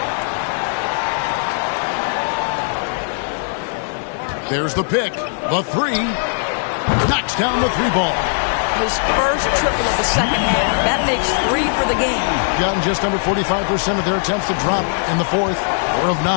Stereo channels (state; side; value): silent; right; digital silence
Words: There's the pick. The three. Knocks down the three ball. His first triple of the second half. That makes 3 for the game. Gotten just under 45% of their attempts to drop in the fourth. 4 of